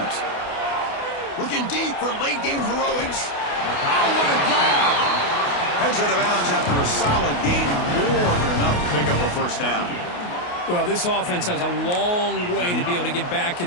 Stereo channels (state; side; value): late; right; 28 ms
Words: Looking deep for late game heroics. Oh, what a grab! Heads out of bounds after a solid gain, more than enough to pick up a 1st down. Well, this offense has a long way to be able to get back